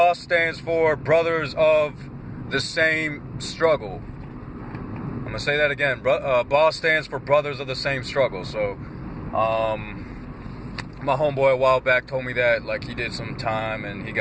stands for Brothers of the Same Struggle. I'm gonna say that again. BOSS stands for Brothers of the Same Struggle. So, my homeboy a while back told me that, like, he did some time and he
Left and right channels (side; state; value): both; identical; correlation 1.00